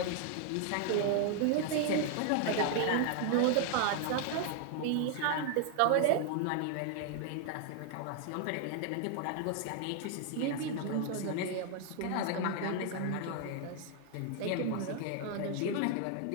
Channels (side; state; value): both; different; correlation 0.00